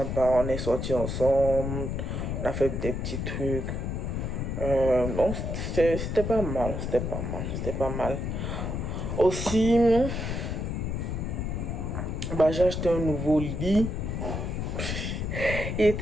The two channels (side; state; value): left; noise; rumble, 2 dB below the sound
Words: bah, on est sortis ensemble, on a fait des petits trucs. Donc c'était pas mal, c'était pas mal. Aussi, bah, j'ai acheté un nouveau lit. Il